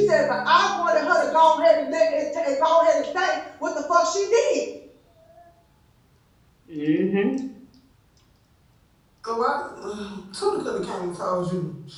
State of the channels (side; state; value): both; identical; correlation 1.00